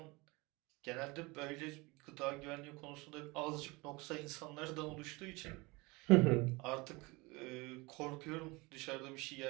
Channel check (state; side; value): quieter; left; 24.7 dB